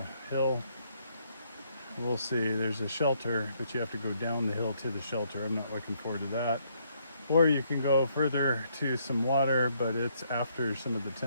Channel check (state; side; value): inverted; both; correlation -0.71